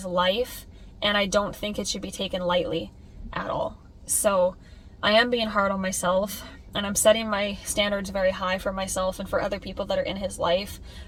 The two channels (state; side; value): identical; both; correlation 1.00